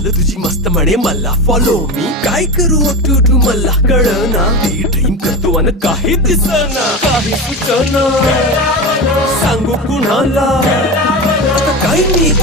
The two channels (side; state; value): both; normal; correlation 0.22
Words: तुझी मस्त म्हणे मला फॉलो मी काय करू टू मला कळना ती ड्रीम करतो आणि काही दिसना काही सुचना सांगू कुणाला आता काय मी